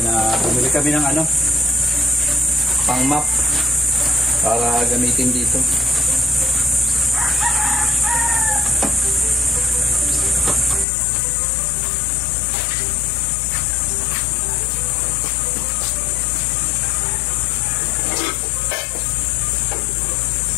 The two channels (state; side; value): drops out; right; at 10.9 s